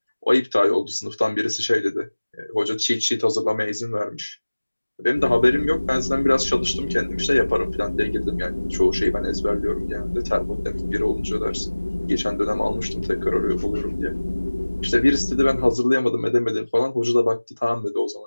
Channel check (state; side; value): inverted; both; correlation -1.00